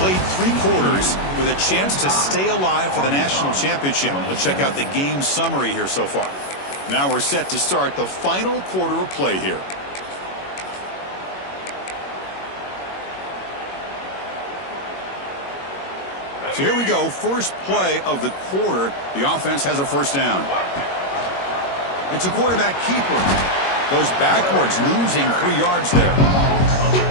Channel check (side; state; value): right; late; 21 ms